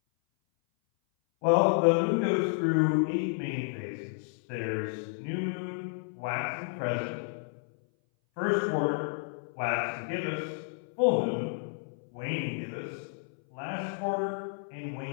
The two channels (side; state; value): right; silent; 57 dB below the other